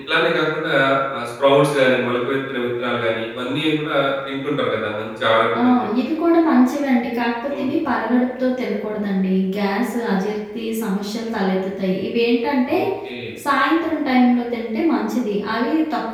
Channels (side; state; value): both; identical; correlation 1.00